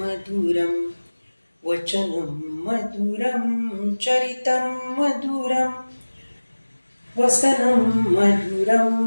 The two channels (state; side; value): inverted; both; correlation -1.00